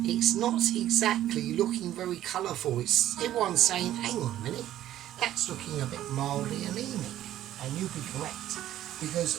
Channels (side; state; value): left; quieter; 12.8 dB